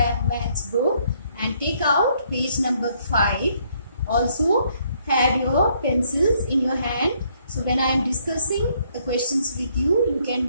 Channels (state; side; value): inverted; both; correlation -0.69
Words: book and take out page number 5. Also have your pencils in your hand. So when I am discussing the questions with you, you